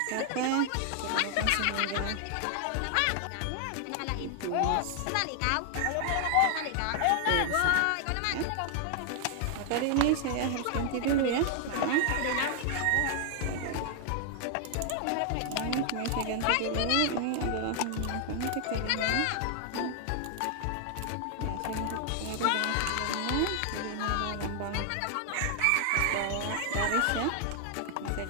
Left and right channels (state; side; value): different; both; correlation 0.00